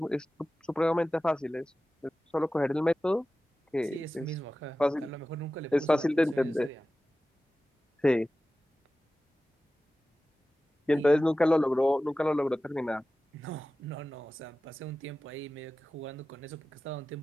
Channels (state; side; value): normal; both; correlation 0.95